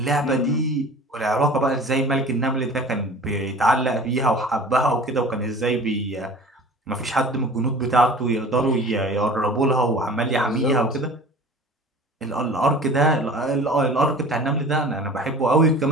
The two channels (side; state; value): both; normal; correlation 0.42